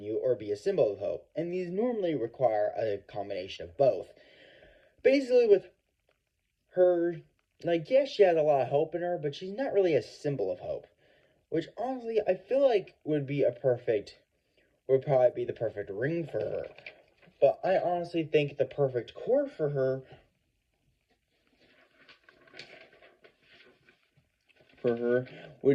or be a symbol of hope, and these normally require a combination of both. Basically, with her, yes, she has a lot of hope in her, but she's not really a symbol of hope, which honestly, I feel like would probably be the perfect ring for her. But I honestly think the perfect core for her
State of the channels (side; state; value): both; identical; correlation 1.00